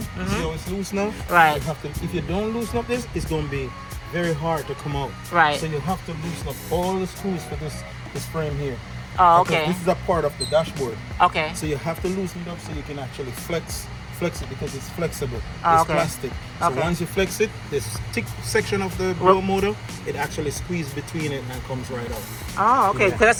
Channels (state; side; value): identical; both; correlation 1.00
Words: how it's loose now? Right. You have to, if you don't loosen up this, it's going to be very hard to come out. Right. So you have to loosen up all the screws for this frame here. Oh, okay. This is a part of the dashboard. Okay. So you have to loosen it up so you can actually flex it because it's flexible. Oh, it's okay. plastic. So okay. once you flex it, this thick section of the blower motor, it actually squeezes between it and comes right out. Oh, okay. Because I